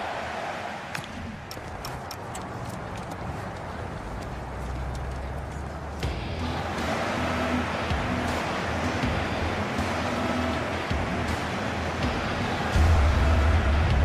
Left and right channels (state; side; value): identical; both; correlation 1.00